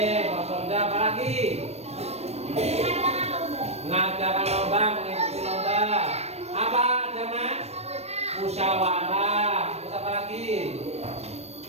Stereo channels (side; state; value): left; late; 0.31 ms